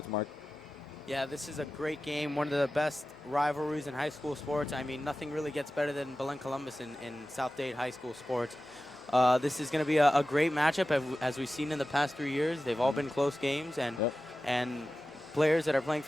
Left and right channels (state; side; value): normal; both; correlation 0.94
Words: Mark. Yeah, this is a great game, one of the best rivalries in high school sports. I mean, nothing really gets better than Belen Columbus in South Dade high school sports. This is going to be a great matchup, as we've seen in the past 3 years. They've all been close games, and players that are playing